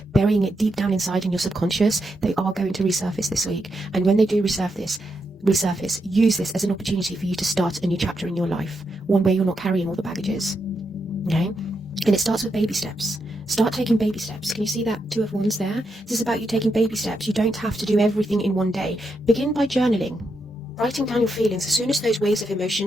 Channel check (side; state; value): both; normal; correlation 0.83